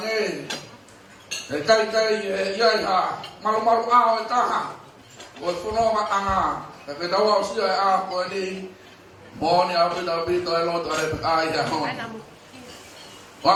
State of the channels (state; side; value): identical; both; correlation 1.00